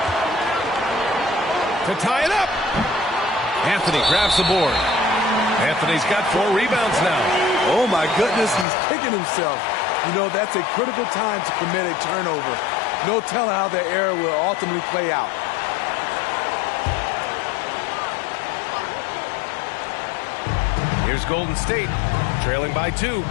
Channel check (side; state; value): right; drops out; at 8.7 s